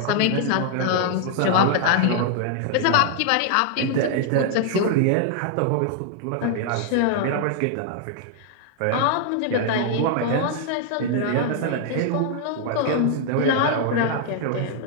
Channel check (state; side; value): different; both; correlation 0.00